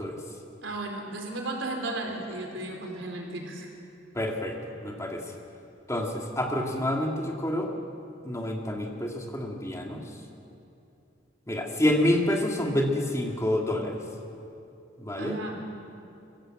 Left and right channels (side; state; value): both; normal; correlation 0.66